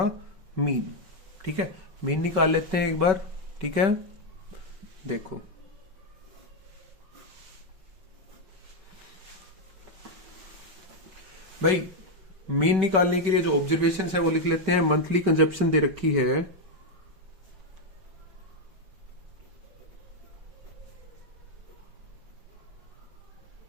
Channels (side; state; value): left; late; 5.3 ms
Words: मीन। ठीक है, मीन निकाल लेते हैं एक बार। ठीक है, देखो भाई, मीन निकालने के लिए जो ऑब्जर्वेशन है वो लिख लेते हैं। मंथली कंजप्शन दे रखी है